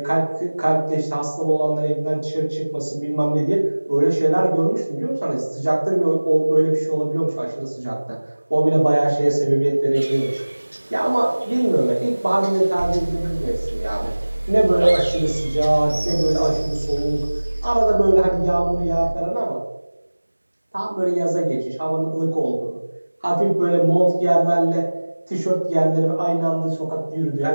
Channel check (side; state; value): both; inverted; correlation -1.00